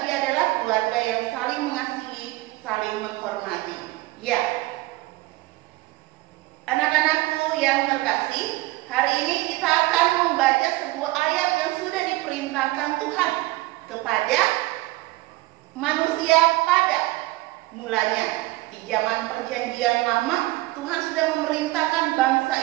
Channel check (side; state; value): left; quieter; 19.5 dB